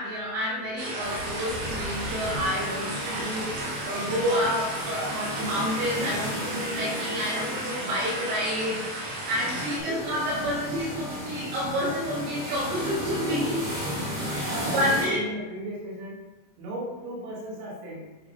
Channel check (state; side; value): late; left; 27 ms